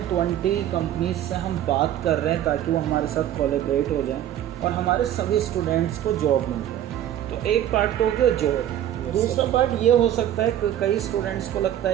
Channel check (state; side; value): quieter; left; 11.5 dB